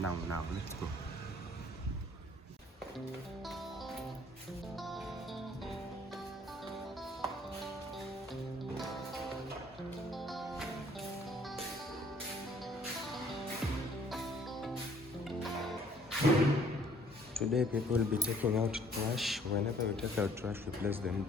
let's go. Today people will be taking out trash. Whenever we take out trash, we place them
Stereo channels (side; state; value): both; normal; correlation 0.59